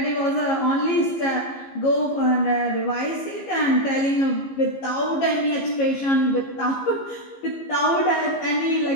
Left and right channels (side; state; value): right; late; 15 ms